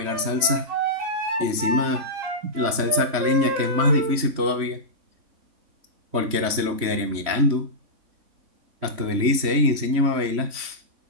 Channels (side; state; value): left; late; 3.1 ms